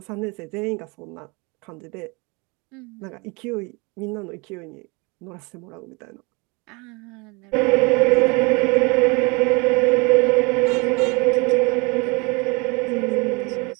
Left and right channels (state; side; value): quieter; left; 28.5 dB